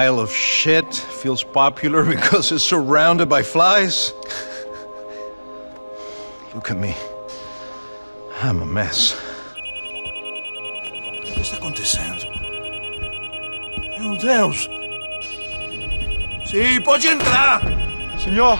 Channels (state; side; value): inverted; both; correlation -1.00